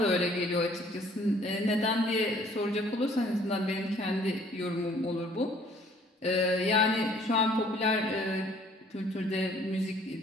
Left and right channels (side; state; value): both; normal; correlation 0.58